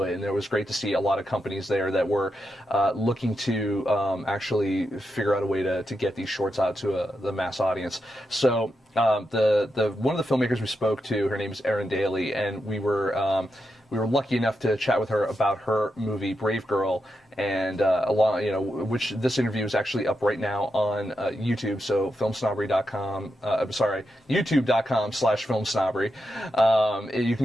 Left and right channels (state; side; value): normal; both; correlation 0.86